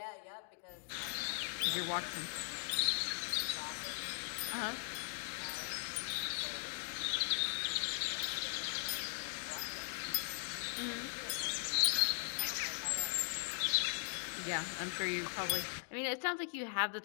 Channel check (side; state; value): right; silent; digital silence